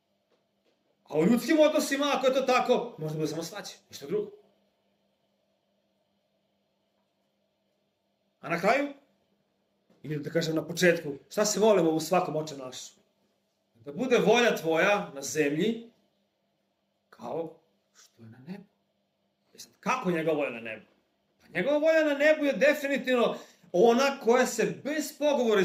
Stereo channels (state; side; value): identical; both; correlation 1.00